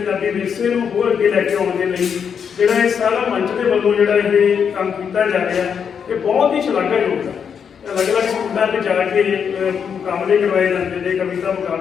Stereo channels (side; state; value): right; quieter; 7.1 dB